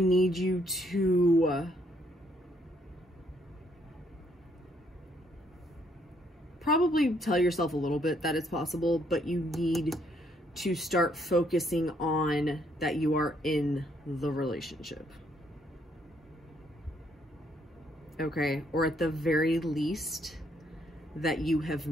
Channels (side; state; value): both; normal; correlation 0.70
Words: you to probably tell yourself a little bit that it's possible, but you need to start focusing on that you are in the relationship. Okay? Or at the very least, that you have